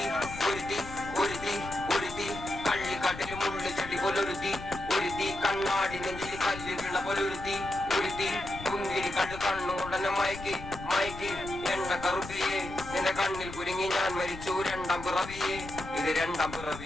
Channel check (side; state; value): left; noise; rumble, 12 dB below the sound